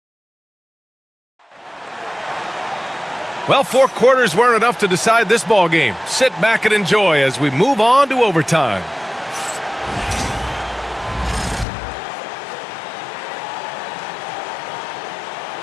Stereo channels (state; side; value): drops out; right; at 11.7 s